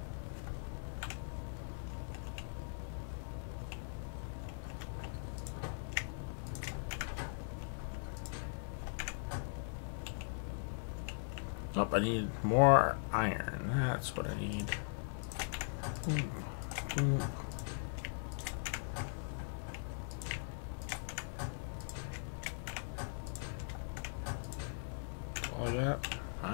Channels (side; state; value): right; silent; 51 dB below the other